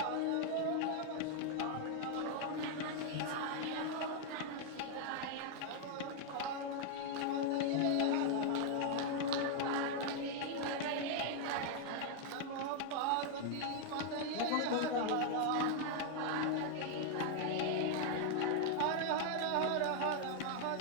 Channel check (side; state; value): both; different; correlation 0.00